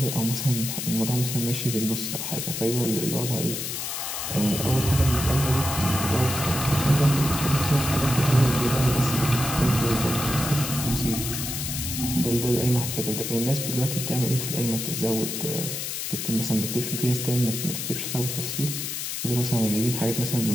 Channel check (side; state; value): left; noise; hiss, 4 dB below the sound